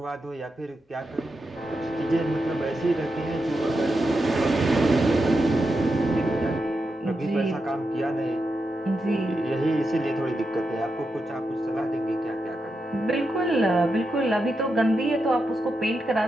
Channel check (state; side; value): normal; both; correlation 0.87